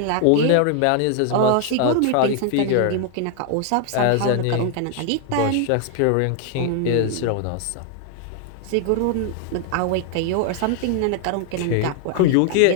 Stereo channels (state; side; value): different; both; correlation 0.00